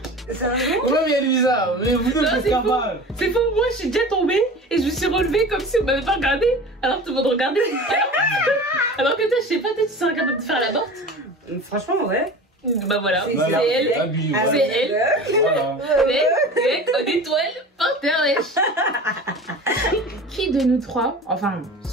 Sérieux? Ouais, mais elle est bizarre. Mais vous deux, Non, vous êtes c'est faux. capable. C'est faux, moi je suis déjà tombée et je me suis relevée comme si on m'avait pas regardé. Alors tout le monde regardait. Alors que toi, je sais pas, toi tu serais capable de faire la morte. Franchement, ouais. Bah voilà, C'est c'est elle. Abus, Ah, C'est elle. Voilà. Mec, en étoile, par terre, wesh. Qui de nous trois, enfin,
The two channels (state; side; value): normal; both; correlation 0.36